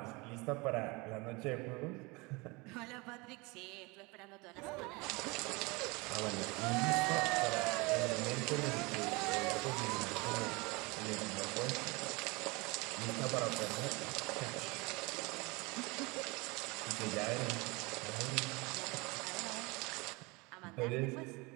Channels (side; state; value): left; quieter; 26.0 dB